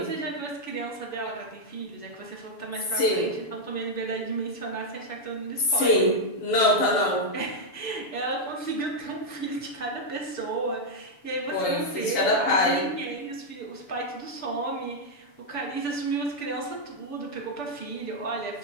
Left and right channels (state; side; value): late; right; 6.9 ms